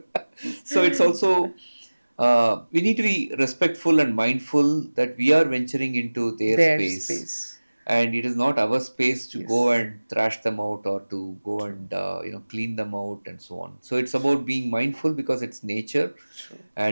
so it's also we need to be respectful and mindful that we are venturing into their their space, space. and it is not our space to go Yes. and thrash them out or to go and clean them out and so on. So it's about being mindful because it's nature, True.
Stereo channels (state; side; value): inverted; both; correlation -1.00